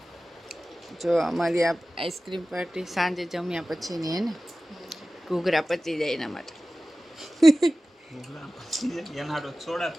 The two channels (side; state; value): both; normal; correlation 0.96